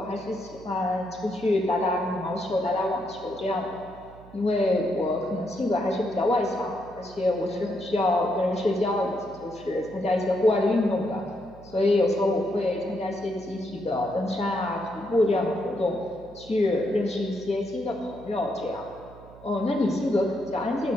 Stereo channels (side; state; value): right; noise; hum, 20 dB below the sound